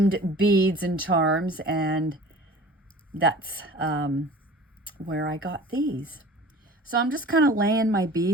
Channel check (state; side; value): normal; both; correlation 0.43